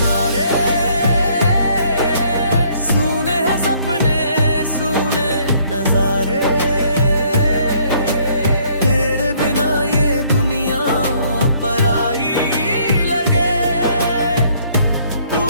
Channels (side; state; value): both; inverted; correlation -0.64